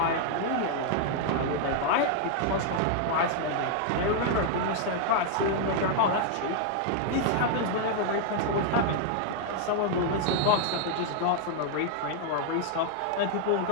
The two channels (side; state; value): both; different; correlation 0.00